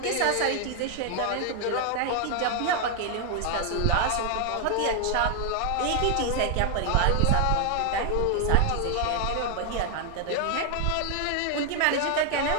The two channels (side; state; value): both; different; correlation 0.00